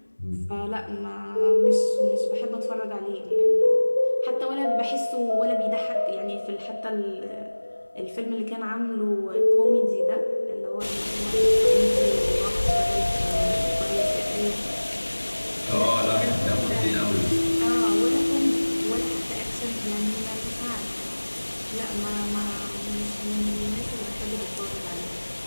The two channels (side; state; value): both; inverted; correlation -1.00